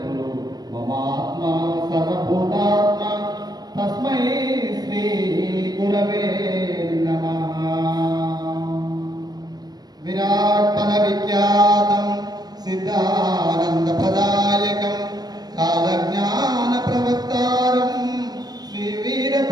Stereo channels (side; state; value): left; late; 0.19 ms